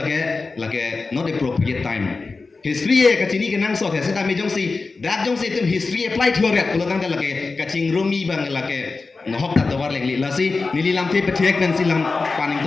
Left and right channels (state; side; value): quieter; right; 4.0 dB